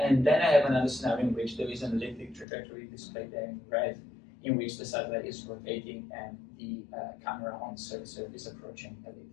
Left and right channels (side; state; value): right; drops out; at 2.5 s